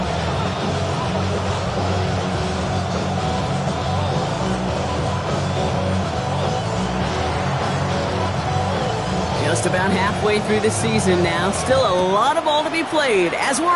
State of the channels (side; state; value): both; identical; correlation 1.00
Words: Just about halfway through the season now. Still a lot of ball to be played as we're